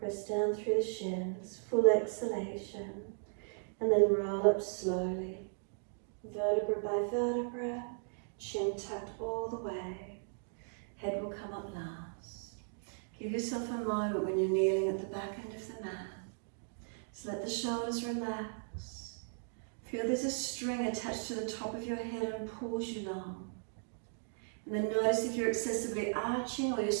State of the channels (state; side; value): silent; left; digital silence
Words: down through the shins, full exhalation, and then roll up slowly, vertebra by vertebra, chin tucked all the way. Head will come up last. Give yourself a moment when you're kneeling at the back end of the mat. So let the shoulders relax. Feel there's a string attached to the top of your head and pulls you long. And then notice if you're excessively arching or you're